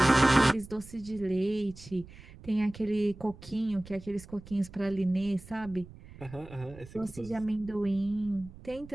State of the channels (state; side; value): noise; right; rumble, 18 dB below the sound